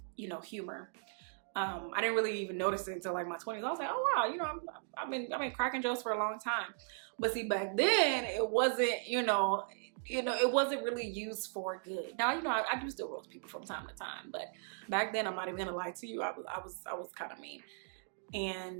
you know, humor. I didn't really even notice it until like my 20s. I was like, oh wow, you know, I've been cracking jokes for a long time. But see, back then it wasn't, you know, it wasn't really used for good. Now, you know, I do still roast people from time to time, but back then, I'm not even gonna lie to you, I was kind of mean.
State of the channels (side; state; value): left; silent; digital silence